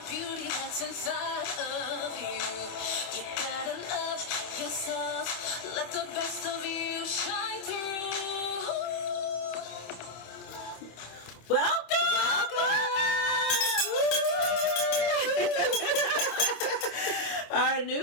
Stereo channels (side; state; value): right; late; 26 ms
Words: beauty that's inside of you. You gotta love yourself. Let the best of you shine through. Our